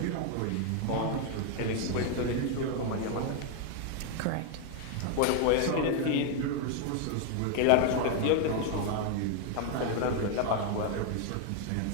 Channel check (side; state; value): both; different; correlation 0.00